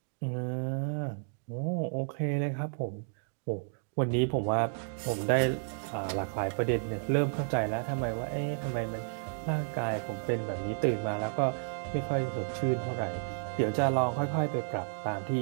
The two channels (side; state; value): left; silent; digital silence